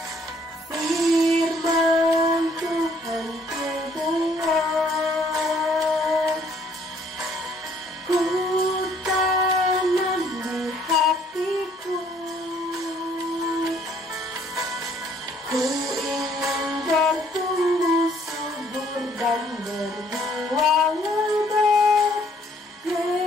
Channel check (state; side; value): normal; both; correlation 0.63